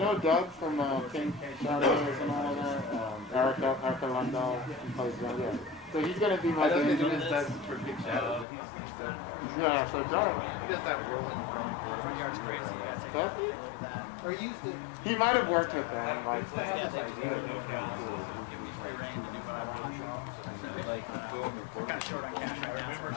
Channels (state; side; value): drops out; right; at 8.5 s